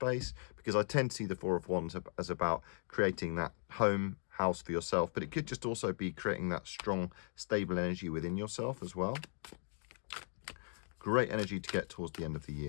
because I tend to see the Four of Wands as about creating that house for yourself, but it could just also be creating that strong, stable energy within yourself as well. Great energy to get towards the end of the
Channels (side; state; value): right; silent; 52 dB below the other